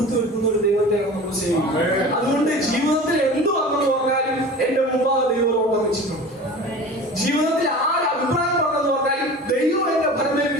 വരുത്തുന്ന ഒരു ദൈവത്തെയാണ് നമ്മൾ സേവിക്കുന്നത്. അതുകൊണ്ട് ജീവിതത്തിൽ എന്ത് വന്നെന്ന് പറഞ്ഞാലും എന്റെ മുമ്പാകെ ദൈവം ഓട്ടം വെച്ചിട്ടുണ്ട്. ജീവിതത്തിൽ ആര് അഭിപ്രായം പറഞ്ഞെന്ന് പറഞ്ഞാലും ദൈവം എന്നെ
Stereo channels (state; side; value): normal; both; correlation 0.37